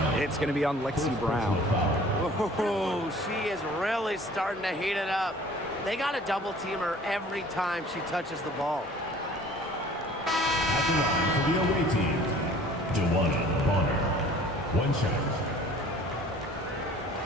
It's going to be on Lexi Brown. Oh, she is really starting to heat it up. They got to double team her every time she touches the ball. At the line for the away team, Dewana Bonner. One shot.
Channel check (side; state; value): both; normal; correlation 0.50